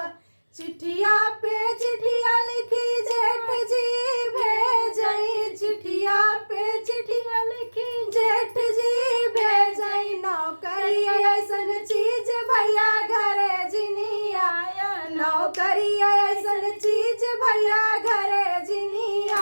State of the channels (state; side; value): inverted; both; correlation -1.00